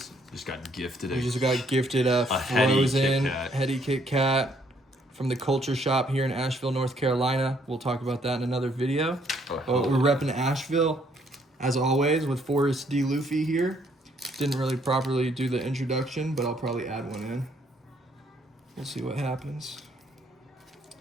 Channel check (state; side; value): normal; both; correlation 0.67